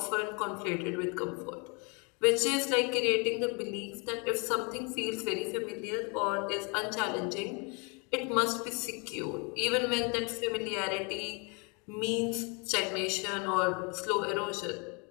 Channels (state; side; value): quieter; right; 32.7 dB